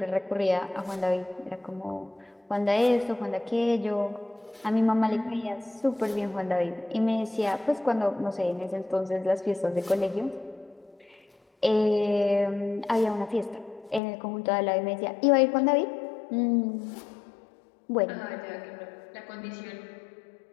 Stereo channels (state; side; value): drops out; right; at 14.0 s